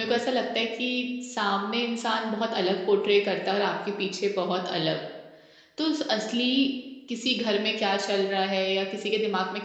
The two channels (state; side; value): identical; both; correlation 1.00